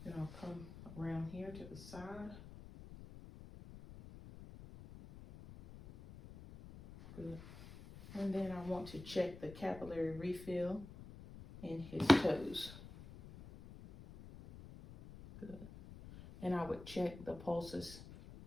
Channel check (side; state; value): left; noise; rumble, 15 dB below the sound